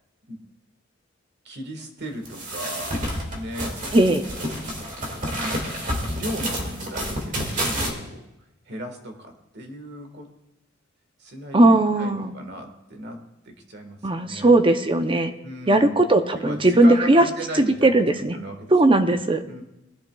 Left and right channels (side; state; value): both; normal; correlation 0.64